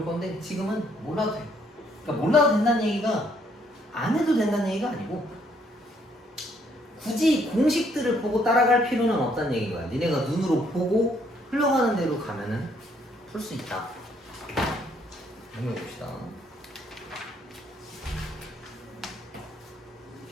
건데 지금은 몰라도 돼. 그러니까 몰라도 된다는 얘기가 안 해도 된다는 얘기가 아니고 굳이 공식들을 보고 따라갈 필요는 없다는 얘기인 거야. 니네가 눈으로 보고 흘러가는 대로 가면은 풀 수 있다. 한번 봅시다.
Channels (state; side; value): normal; both; correlation 0.68